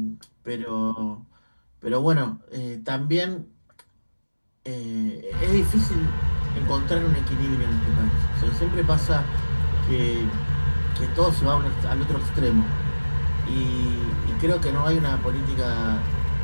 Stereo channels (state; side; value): inverted; both; correlation -1.00